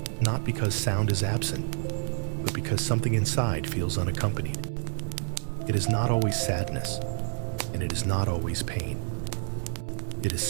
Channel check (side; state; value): left; silent; 59 dB below the other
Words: Not because sound is absent, but because something inside feels unaccompanied. It is not always sadness, and it is not always pain. It is